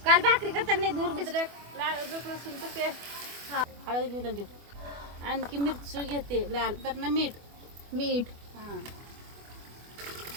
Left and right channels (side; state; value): left; late; 24 ms